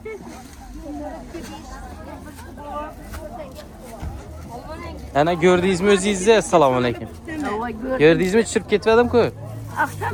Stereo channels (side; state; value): both; identical; correlation 1.00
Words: Ana gördüğünüz mü özünüzde? Selamun aleyküm. Gördüğünüz mü çırp getmedim ki?